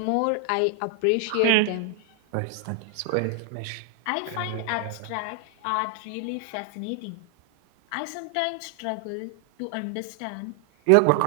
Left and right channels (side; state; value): both; different; correlation 0.00